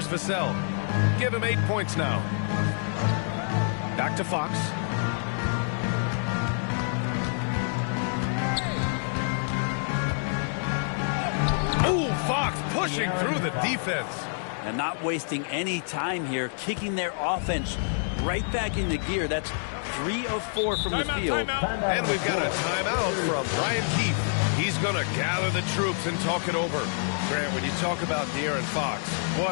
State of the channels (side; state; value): right; silent; 60 dB below the other